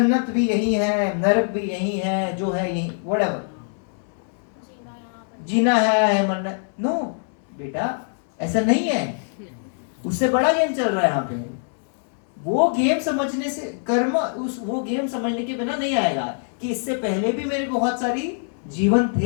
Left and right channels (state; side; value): silent; right; 63 dB below the other